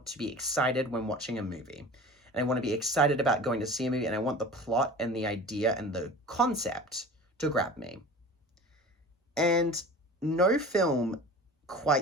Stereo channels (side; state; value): both; normal; correlation 0.38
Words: to be excited when watching a movie. And I want to be excited about going to see a movie, and I want the plot and the idea and the concept to grab me. And no film